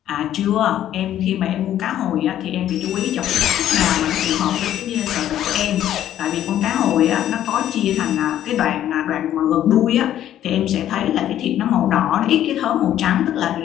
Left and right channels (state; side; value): quieter; right; 11.7 dB